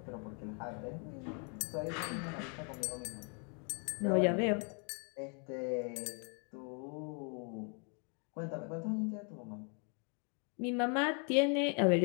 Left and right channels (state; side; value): quieter; right; 38.5 dB